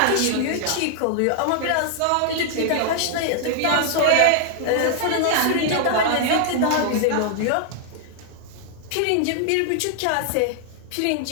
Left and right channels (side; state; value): both; different; correlation 0.00